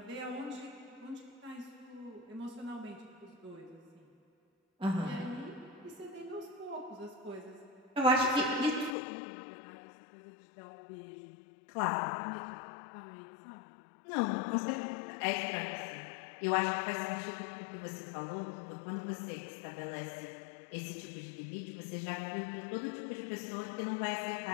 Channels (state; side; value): drops out; right; at 9.0 s